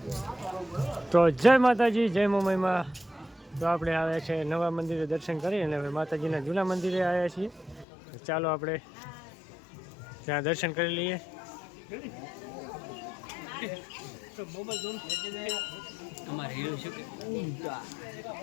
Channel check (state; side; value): drops out; right; at 7.9 s